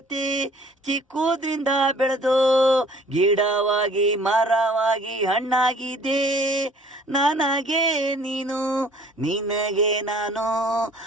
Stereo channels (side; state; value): both; normal; correlation 0.54